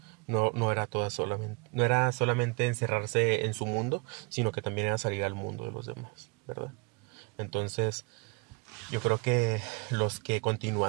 No era solamente encerrarse en su mundo, sino que también era salir al mundo de los demás, ¿verdad? Entonces, yo creo que los que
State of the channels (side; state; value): left; quieter; 30.3 dB